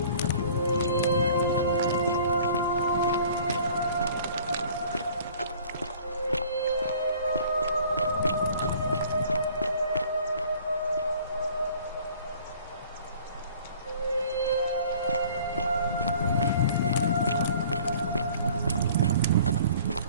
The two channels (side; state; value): both; inverted; correlation -0.51